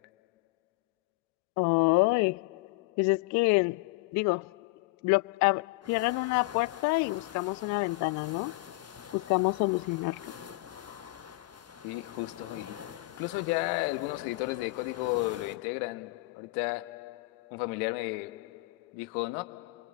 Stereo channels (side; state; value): right; quieter; 23.1 dB